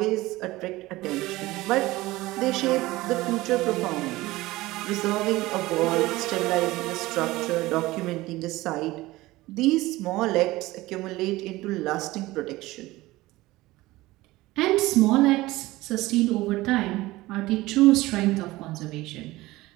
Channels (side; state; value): left; quieter; 18.9 dB